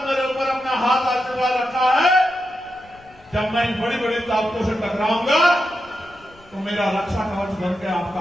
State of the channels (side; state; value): left; noise; rumble, 26 dB below the sound